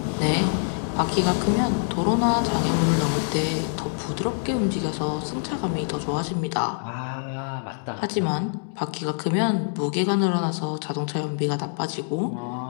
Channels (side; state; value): right; silent; digital silence